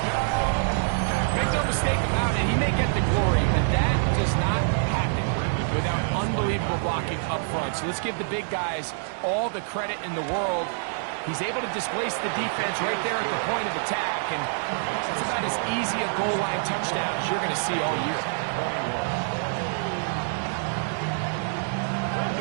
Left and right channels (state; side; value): silent; left; digital silence